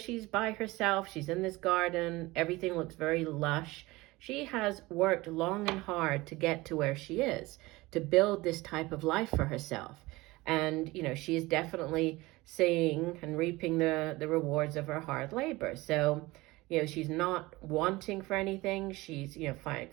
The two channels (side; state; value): left; quieter; 20.8 dB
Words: by herself. She's in this garden. Everything looks very lush. She has worked long and hard to get to where she is, to build this type of life for herself. And, she is definitely seeing and reaping the rewards of her hard labor. So, she's not wanting for anything. She's,